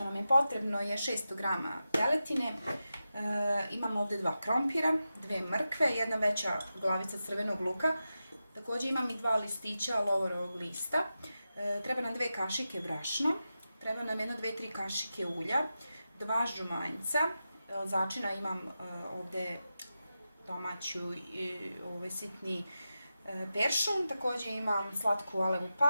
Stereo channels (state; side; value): inverted; both; correlation -0.91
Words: nam je potrebno je 600 g teletine, imamo ovdje 2 krompira, 2 mrkve, jedna veća glavica crvenog luka, također imam i 2 listića lovorovog lista, treba nam 2 kašike brašna, treba nam 1-2-3 kašike ulja, 2 žumanjca, začina imam ovdje domaću sitni peršun, također imam slatku alevu